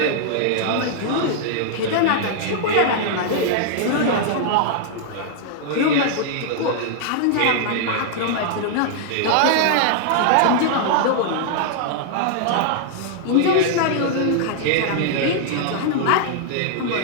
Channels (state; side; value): different; both; correlation -0.01